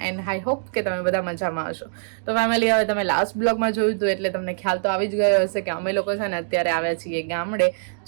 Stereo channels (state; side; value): silent; left; digital silence